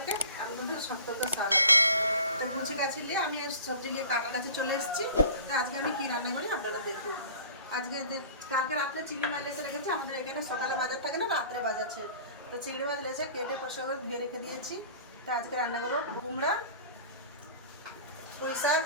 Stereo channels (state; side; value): inverted; both; correlation -0.43